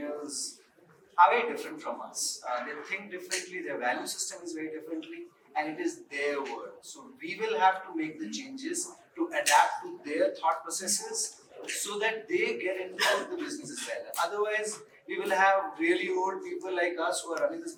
are very different from us. They think differently, their value system is very differently, and it is their world. So we will have to make the changes to adapt to their thought processes so that they get into the business as well. Otherwise, we will have really old people like us who are running this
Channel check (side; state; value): both; identical; correlation 1.00